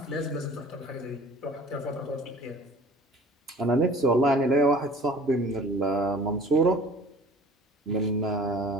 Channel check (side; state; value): both; normal; correlation 0.47